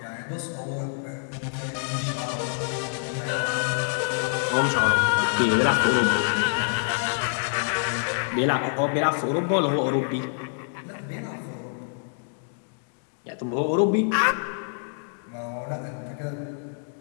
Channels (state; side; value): silent; right; digital silence